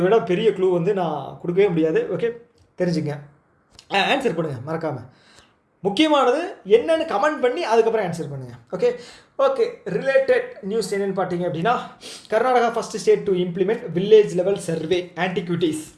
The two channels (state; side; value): identical; both; correlation 1.00